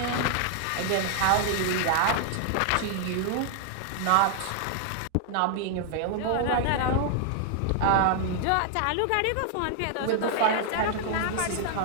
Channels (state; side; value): different; both; correlation 0.00